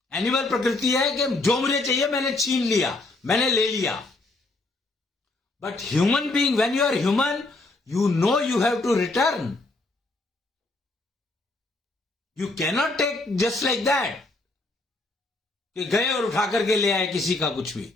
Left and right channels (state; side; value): quieter; right; 3.0 dB